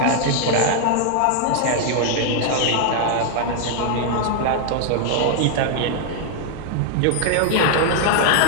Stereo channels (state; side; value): different; both; correlation 0.00